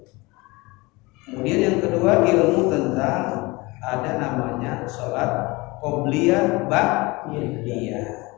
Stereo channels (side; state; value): right; quieter; 23.9 dB